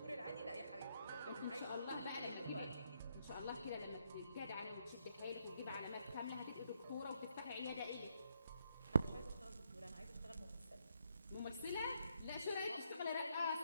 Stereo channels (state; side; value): inverted; both; correlation -0.77